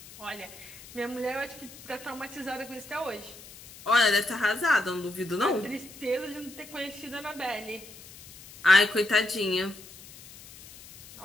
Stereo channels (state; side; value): noise; left; hiss, 18 dB below the sound